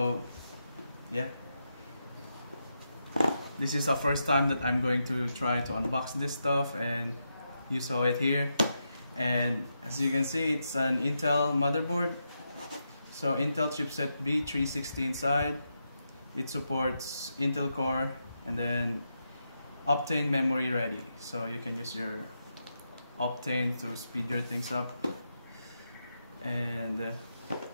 yeah, this is the first time that I'm going to try to unbox this stuff, and you saw it here. And as you can see, it's an Intel motherboard. So Intel chipset B360 inside. It supports Intel Core and then Optane memory ready. So you can use your Optane to speed your things up. And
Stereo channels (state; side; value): inverted; both; correlation -0.85